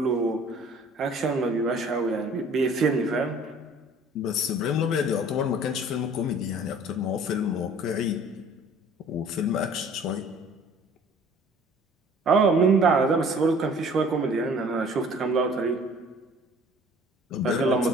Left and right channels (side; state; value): both; normal; correlation 0.51